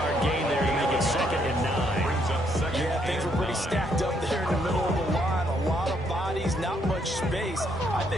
gain there to make it 2nd and 9. Brings up second. Yeah, things were pretty stacked up there in the middle of the line. A lot of bodies, not much space. I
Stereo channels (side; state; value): both; normal; correlation 0.72